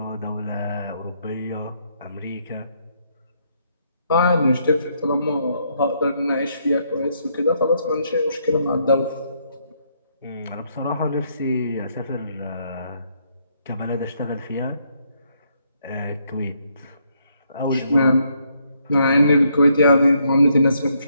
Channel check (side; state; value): both; inverted; correlation -0.74